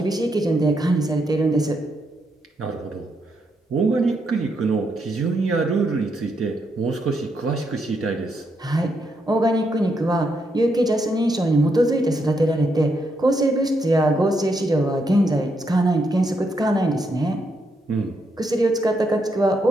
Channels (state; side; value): normal; both; correlation 0.79